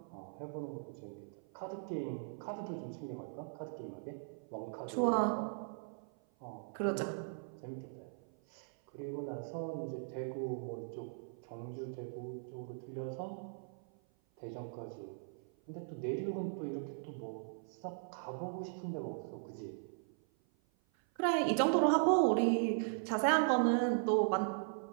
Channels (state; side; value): silent; left; 52 dB below the other